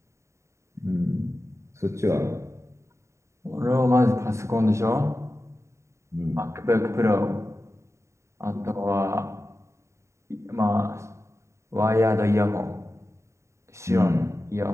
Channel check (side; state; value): left; late; 0.14 ms